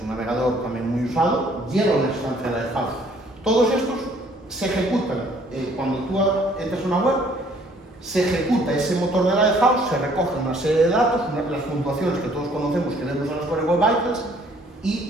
navegador también muy usado, lleva una instancia de Lighthouse. Todos estos se ejecutan. Cuando tú entras a una web, se ejecuta ese motor de Lighthouse, se recoge una serie de datos, las puntuaciones que todos conocemos que vemos en las Core Web Vitals,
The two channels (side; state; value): both; normal; correlation 0.60